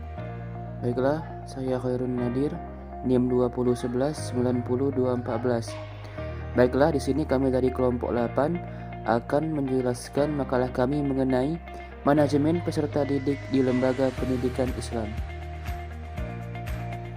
Baiklah, saya Khairun Nadir, NIM 201190214. Baiklah, di sini kami dari kelompok 8 akan menjelaskan makalah kami mengenai manajemen peserta didik di lembaga pendidikan Islam.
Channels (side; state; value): both; identical; correlation 1.00